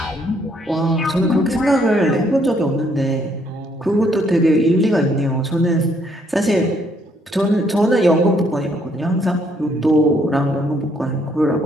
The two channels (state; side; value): normal; both; correlation 0.69